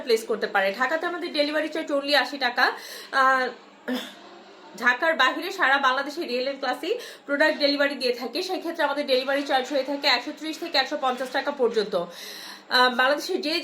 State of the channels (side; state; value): both; identical; correlation 1.00